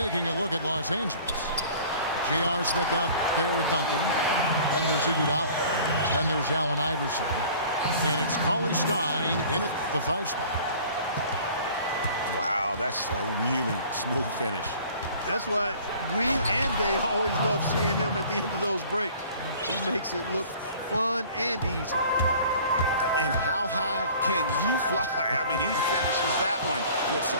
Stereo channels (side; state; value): both; inverted; correlation -0.48